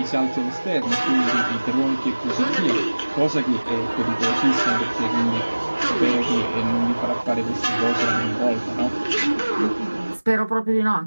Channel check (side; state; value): both; inverted; correlation -1.00